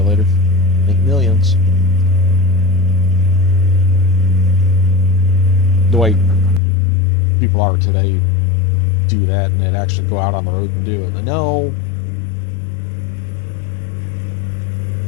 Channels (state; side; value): drops out; right; at 6.6 s